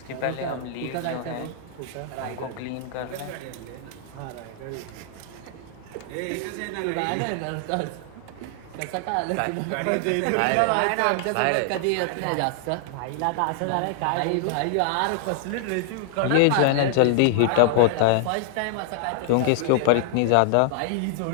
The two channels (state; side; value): different; both; correlation -0.01